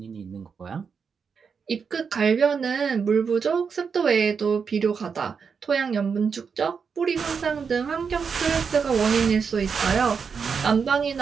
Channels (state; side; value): quieter; left; 6.0 dB